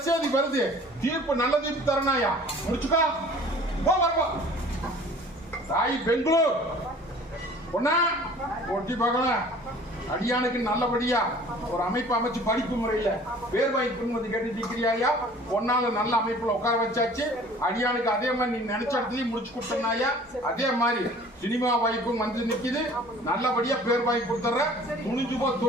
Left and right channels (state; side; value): normal; both; correlation 0.49